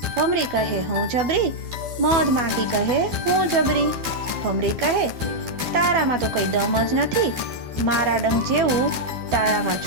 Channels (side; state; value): left; late; 12 ms